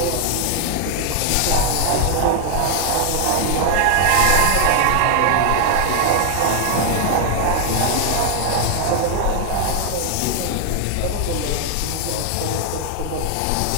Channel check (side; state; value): both; different; correlation 0.00